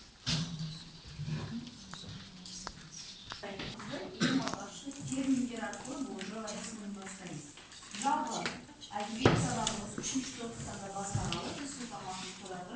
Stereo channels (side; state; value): both; identical; correlation 1.00